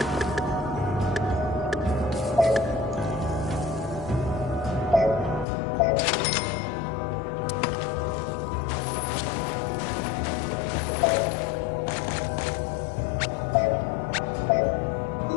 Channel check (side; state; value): right; drops out; at 5.5 s